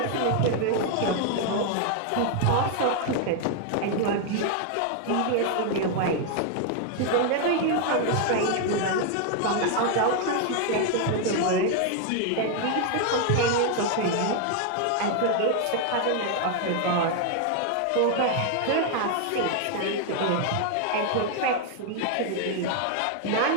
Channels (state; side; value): different; both; correlation 0.00